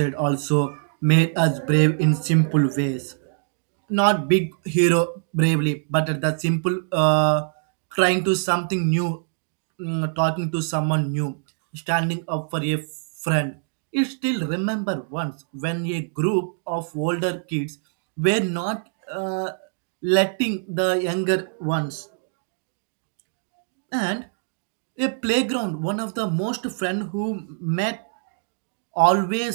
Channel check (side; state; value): left; silent; digital silence